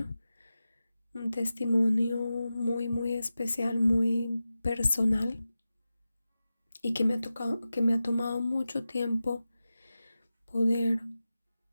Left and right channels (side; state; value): both; inverted; correlation -0.93